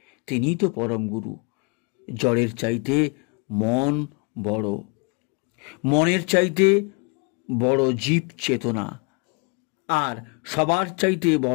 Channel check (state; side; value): quieter; right; 33.3 dB